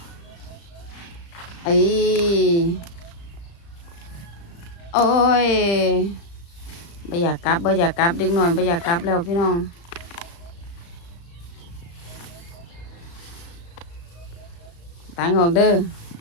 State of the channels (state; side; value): late; right; 35 ms